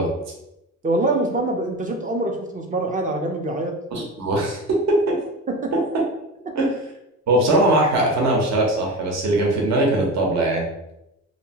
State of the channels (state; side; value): normal; both; correlation 0.26